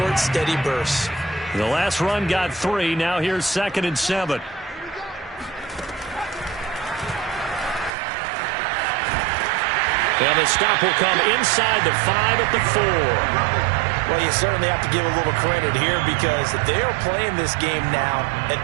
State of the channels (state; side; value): drops out; left; at 7.9 s